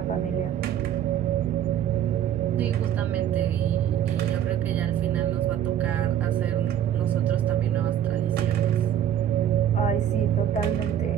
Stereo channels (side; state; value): left; quieter; 10.2 dB